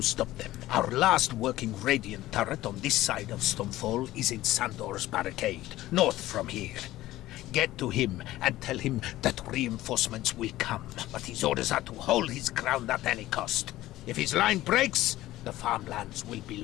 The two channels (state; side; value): quieter; right; 15.9 dB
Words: stop them. Our last working Radiant turret on this side of Stonefall is in Sandor's barricade, north from here. Get to him and tell him that reinforcements will come, but his orders are to hold his ground at any cost. If his line breaks, the farmlands will be